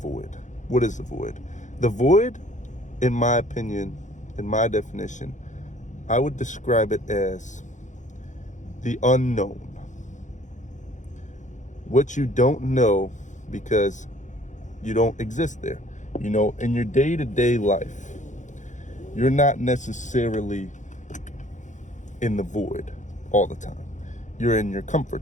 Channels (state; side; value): late; right; 0.35 ms